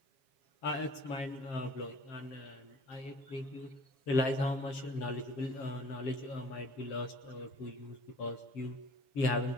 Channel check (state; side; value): late; right; 7.6 ms